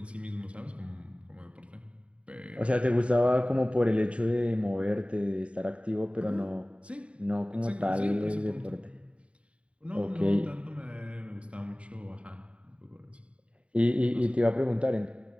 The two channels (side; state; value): left; late; 0.061 ms